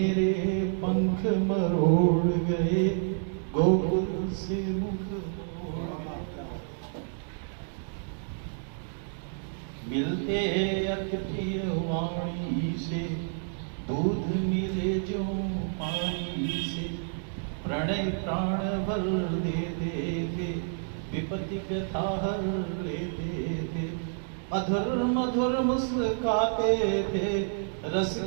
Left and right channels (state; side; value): silent; left; digital silence